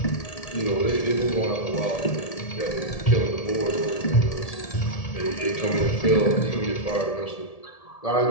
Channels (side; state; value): right; late; 1.7 ms